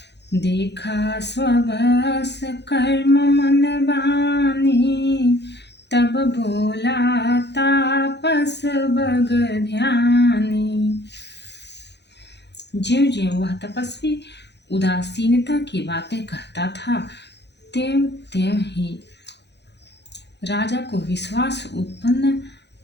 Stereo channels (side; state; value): right; late; 0.50 ms